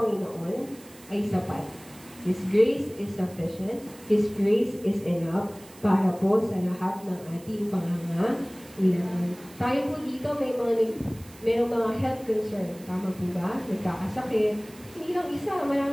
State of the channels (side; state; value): right; noise; hiss, 22 dB below the sound